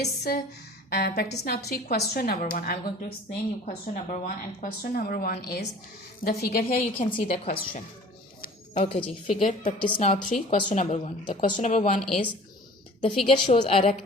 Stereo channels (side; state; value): both; normal; correlation 0.46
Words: practice now 3 question number 1, I'm going to explain you question number 1, and question number 1 is the figure. Here you can see the question. Okay ji, figure practice now 3 question number 1. The question number 1 is the figure shows a